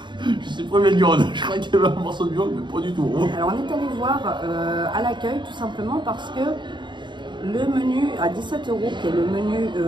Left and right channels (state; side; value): late; left; 0.22 ms